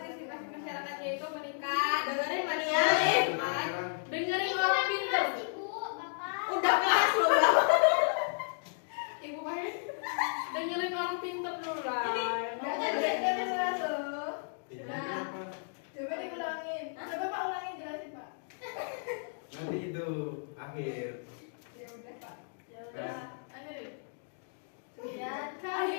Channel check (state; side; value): silent; right; digital silence